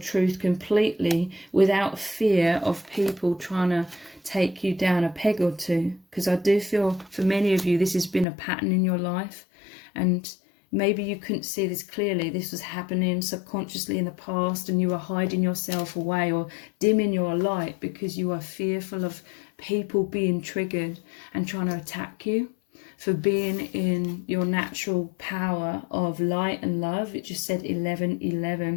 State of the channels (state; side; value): drops out; right; at 8.2 s